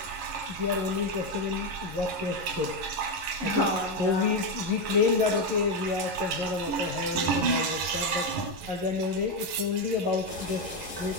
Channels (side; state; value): left; late; 11 ms